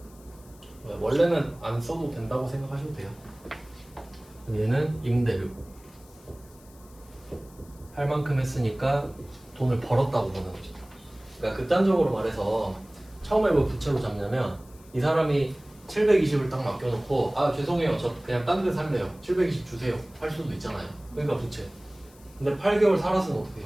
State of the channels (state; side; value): noise; left; hiss, 26 dB below the sound